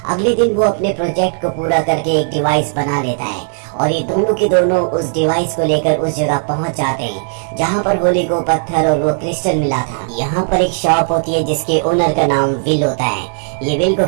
अगले दिन वो अपने प्रोजेक्ट को पूरा करके एक डिवाइस बना लेता है और ये दोनों के दोनों उस डिवाइस को लेकर उस जगह पहुंच जाते हैं जहां पर होली को पत्थर और वो क्रिस्टल मिला था। यहाँ पर एक शॉप होती है जिसके ओनर का नाम विल होता है। ये विल को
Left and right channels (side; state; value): left; silent; digital silence